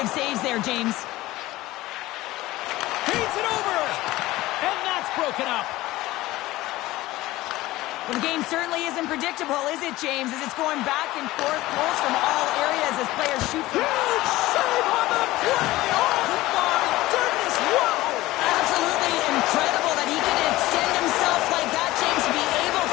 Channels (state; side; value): quieter; right; 17.7 dB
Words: saves there, James. Feeds it over! And that's broken up. Well, the game certainly isn't predictable, is it, James? As it's going back and forth, goals from all areas as players shoot from... Huge save on the play! Oh, my goodness! Wow! Absolutely incredible that he could extend himself like that, James, to be able